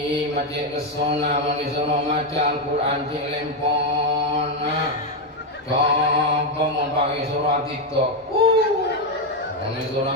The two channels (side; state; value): both; normal; correlation 0.05